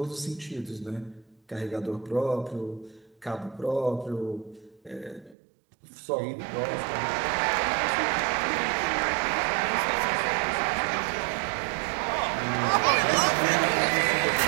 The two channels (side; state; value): left; drops out; at 5.4 s